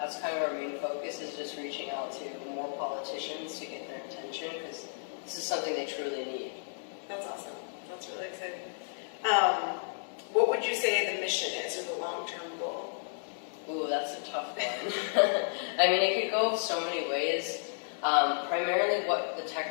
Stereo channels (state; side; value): silent; right; digital silence